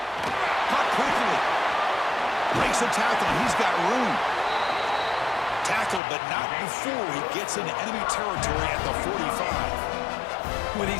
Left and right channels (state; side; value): drops out; right; at 6.0 s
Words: Caught quickly. Breaks a tackle, and he's got room. Tackled, but not before he gets into enemy territory at the 45. With